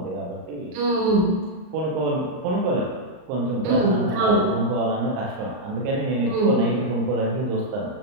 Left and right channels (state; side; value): late; left; 38 ms